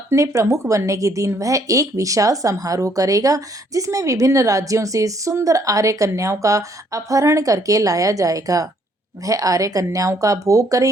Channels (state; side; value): normal; both; correlation 0.67